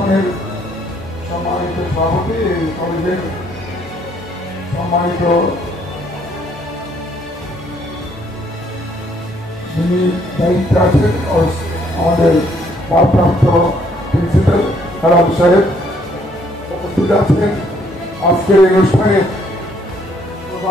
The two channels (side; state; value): both; normal; correlation 0.67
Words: সম্মানিত সভাপতি, এই কলেজের সম্মানিত যিনি দায়িত্বে আছেন আমাদের ভারপ্রাপ্ত প্রিন্সিপাল হেলাল সাহেব উপস্থিত আছেন। আজকের এই অনুষ্ঠানের